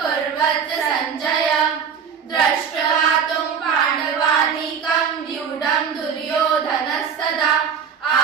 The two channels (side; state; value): left; quieter; 7.0 dB